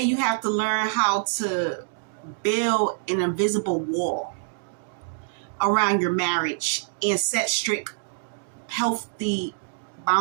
you have to learn how to build an invisible wall around your marriage and set strict, healthy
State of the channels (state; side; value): silent; left; digital silence